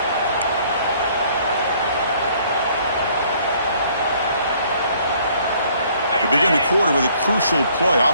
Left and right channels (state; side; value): inverted; both; correlation -0.61